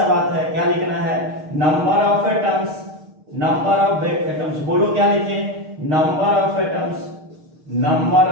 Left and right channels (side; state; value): left; late; 6.5 ms